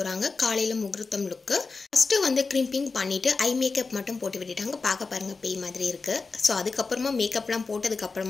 காலையில் முகூர்த்தம் லுக்கு. ஃபஸ்ட்டு வந்து க்ரிம்பிங் பண்ணிவிட்டு ஐ மேக்கப் மட்டும் போட்டு விட்டுட்டாங்க. பார்க்க பாருங்கள் பேய் மாதிரி இருக்குது. ஸோ அதுக்கப்புறமா மேக்கப்லாம்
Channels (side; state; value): right; quieter; 4.2 dB